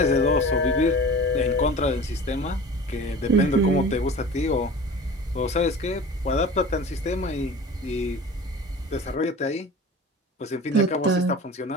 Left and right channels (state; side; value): normal; both; correlation 0.38